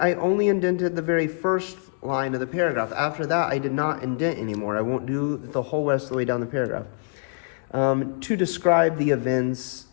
only indented the very first line of the paragraph. After that, I did not indent anymore. I won't do the whole rest of the way down the paragraph. To describe the events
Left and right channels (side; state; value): right; silent; 62 dB below the other